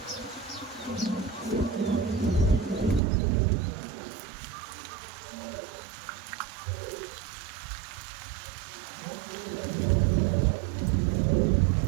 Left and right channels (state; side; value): drops out; left; at 3.0 s